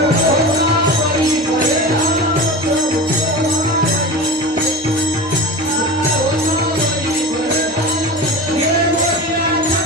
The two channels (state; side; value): normal; both; correlation 0.31